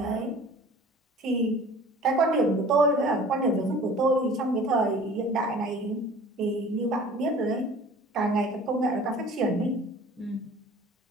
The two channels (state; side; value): normal; both; correlation 0.46